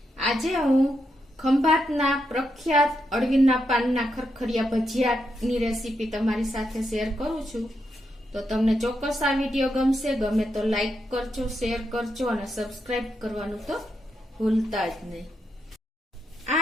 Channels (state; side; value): normal; both; correlation 0.83